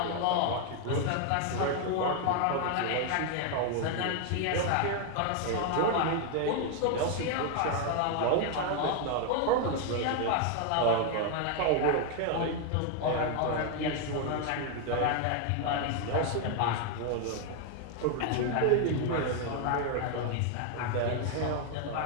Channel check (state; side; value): different; both; correlation 0.00